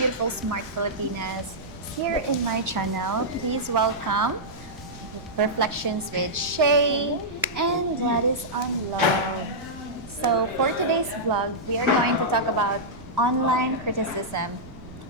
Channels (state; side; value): noise; right; rumble, 17 dB below the sound